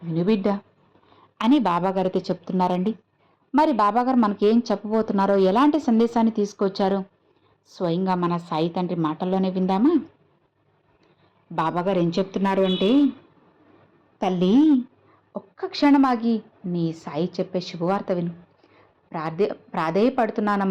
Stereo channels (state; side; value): identical; both; correlation 1.00